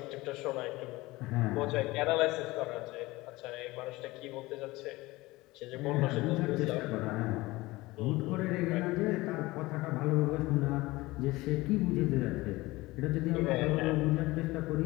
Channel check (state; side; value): quieter; right; 20.2 dB